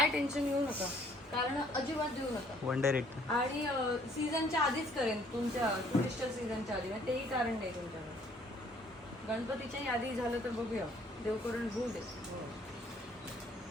टेन्शन घेऊ नका, कारण अजिबात देऊ नका. आणि सीझनच्या आधीच करेन, तुमच्या टुरिस्ट सीझनच्या आधी. तेही कारण नाही तुमच्याकडे. गणपतीच्याही आधी झालं तर बघूया, देव करून होऊ दे.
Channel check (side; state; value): both; normal; correlation 0.61